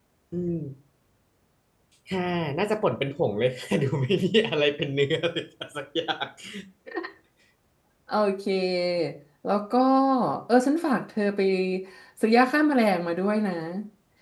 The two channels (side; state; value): both; identical; correlation 1.00